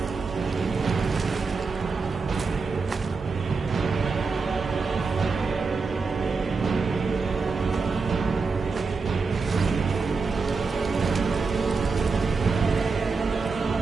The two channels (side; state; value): left; quieter; 4.5 dB